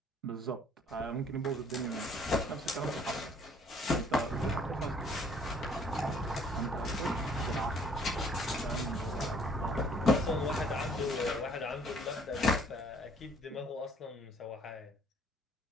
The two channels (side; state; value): both; normal; correlation 0.59